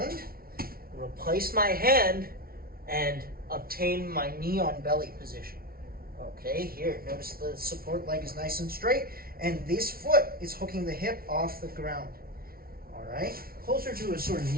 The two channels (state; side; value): late; left; 0.43 ms